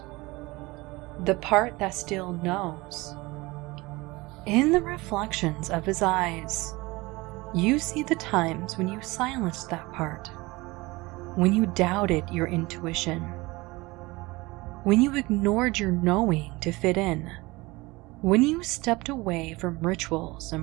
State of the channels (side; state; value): left; quieter; 22.3 dB